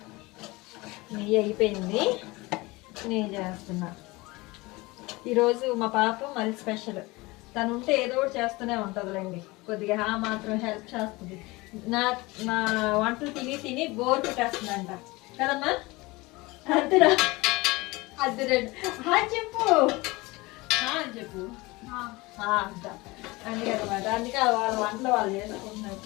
నెయ్యి అయిపోయింది, నెయ్యి చేస్తున్నా. ఈరోజు మా పాప మళ్ళీ స్పెషల్. తను ఉంటే ఏదో ఒకటి చేస్తూనే ఉంటుందిలేండి. కొద్దిగా మాత్రం హెల్ప్ చేస్తుంది. నా వంటలు తిని తిని బోర్ పెట్టేస్తుందంట కదమ్మా. అంతేనా? అద్దరండి చెప్పు చెప్పు అంట. అందుకనమాట, అందుకే వాళ్ళ వంటలు వాళ్ళు చేసుకుంటున్నారు.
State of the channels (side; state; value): right; quieter; 22.6 dB